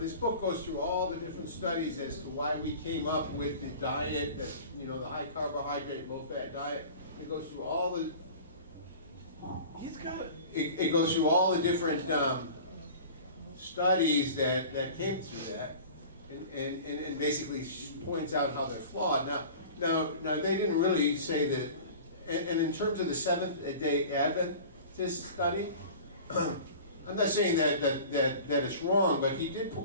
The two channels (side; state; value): both; inverted; correlation -0.40